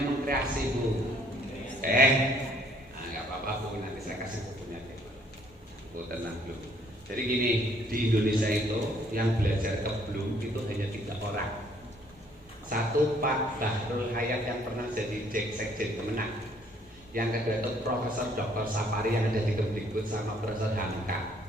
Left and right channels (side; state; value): both; normal; correlation 0.63